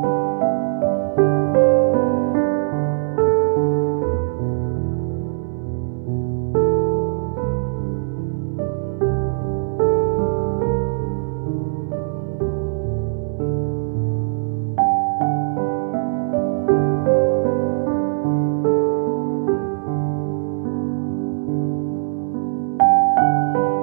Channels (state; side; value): silent; left; digital silence